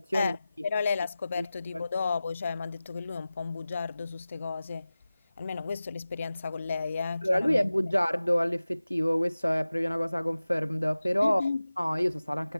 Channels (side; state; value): both; inverted; correlation -0.96